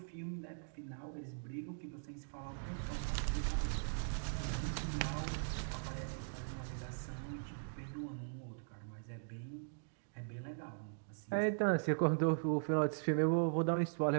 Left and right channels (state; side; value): silent; left; digital silence